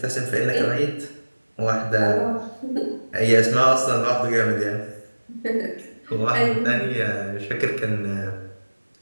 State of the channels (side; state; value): both; inverted; correlation -1.00